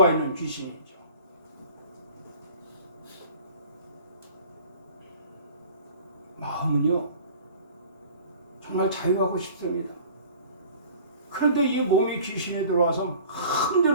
있는 귀신이죠. 마음은요. 정말 자유하고 싶습니다. 그런데 이 몸이 귀신이 들어와서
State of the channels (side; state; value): both; inverted; correlation -0.45